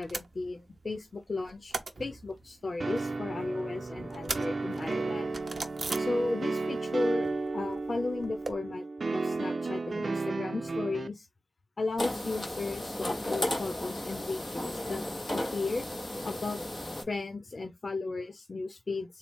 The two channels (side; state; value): both; normal; correlation 0.93